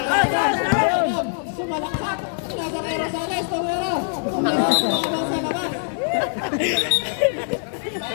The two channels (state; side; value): silent; right; digital silence